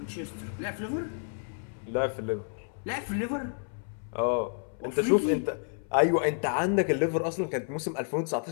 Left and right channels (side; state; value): right; silent; 58 dB below the other